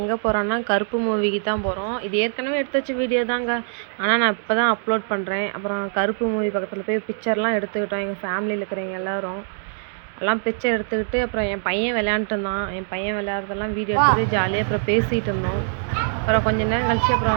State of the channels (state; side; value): silent; left; digital silence